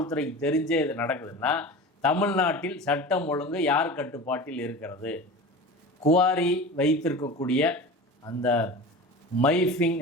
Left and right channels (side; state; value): both; normal; correlation 0.33